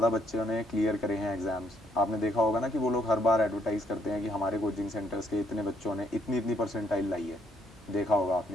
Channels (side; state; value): both; normal; correlation 0.70